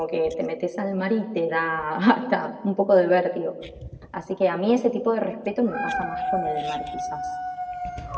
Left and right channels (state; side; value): identical; both; correlation 1.00